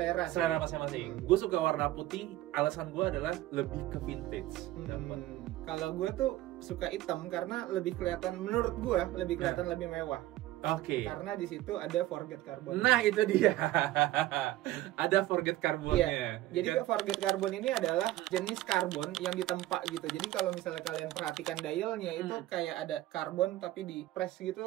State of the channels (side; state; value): left; quieter; 15.9 dB